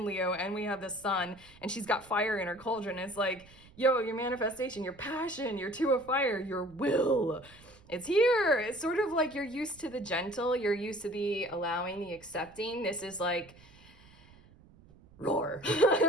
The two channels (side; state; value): right; noise; rumble, 24 dB below the sound